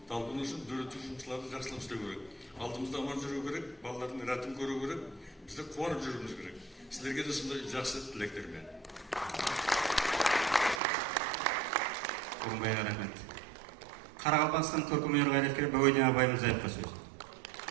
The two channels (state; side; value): drops out; left; at 10.8 s